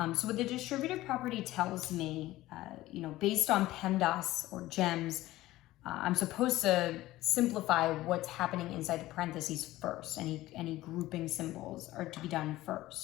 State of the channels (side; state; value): right; quieter; 16.6 dB